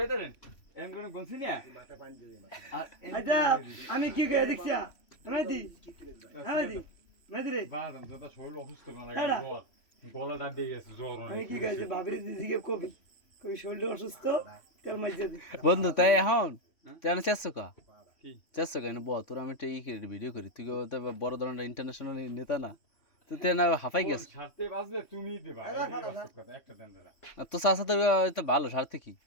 এম কোন গনছি না আচ্ছা আমি কি কই দেখছি মেদি মেদি রে বাদাম দাদা শরীর অসুস্থ না লাগে জ্বর গলা দাঁত দিয়ে গেছে জ্বর আমি কি কইছি ভাবিরে দিদিকে কবি কই শরীর অসুস্থ তেল মাইজে দি বন্ধু তাই এখন জানো চেষ্টা কা কি চেষ্টা কেন বল তোর আমি একটা ভিডিও করি তুই তো বড় ধরনের ইন্টারন্যাশনাল নেতা না তুই তো না হাফাই গেছ ছাড়তে বাজলে তুমি দিবা একটা দেন দাদা তো চাষা তোর তো ভালো স্বার্থে কি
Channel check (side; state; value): right; late; 3.1 ms